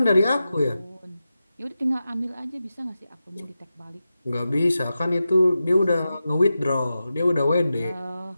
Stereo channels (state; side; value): inverted; both; correlation -0.92